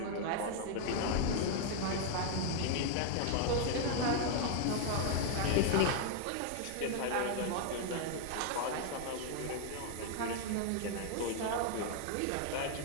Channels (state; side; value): different; both; correlation 0.00